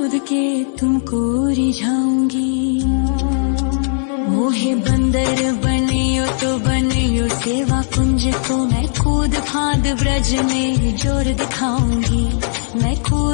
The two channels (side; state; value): right; silent; digital silence